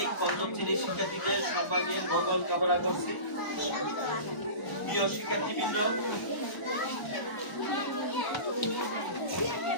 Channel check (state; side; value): late; right; 1.0 ms